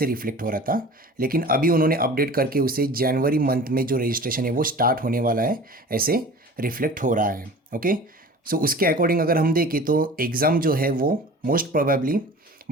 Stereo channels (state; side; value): normal; both; correlation 0.41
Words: रिफ्लेक्ट हो रहा था, लेकिन अभी उन्होंने अपडेट करके उसे जनवरी मंथ में जो रजिस्ट्रेशन है वो स्टार्ट होने वाला है ऐसे रिफ्लेक्ट हो रहा है। ओके, सो उसके अकॉर्डिंग अगर हम देखें तो एग्ज़ाम जो है वो मोस्ट प्रोबेबली